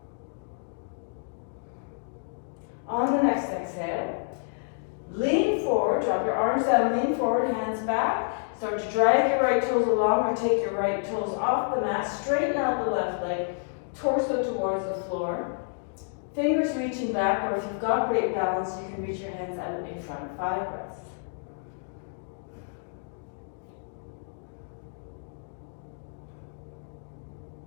On the next exhale, lean forward, drop your arms down, lean forward, hands back. Start to drag your right toes along or take your right toes off the mat. Straighten out the left leg, torso towards the floor. Fingers reaching back, or if you've got great balance, you can reach your hands out in front. 5 breaths.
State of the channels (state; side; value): silent; right; digital silence